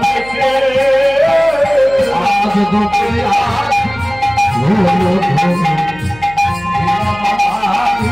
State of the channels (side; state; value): left; noise; hum, 20 dB below the sound